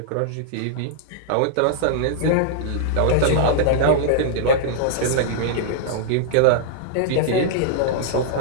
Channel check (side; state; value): both; different; correlation -0.01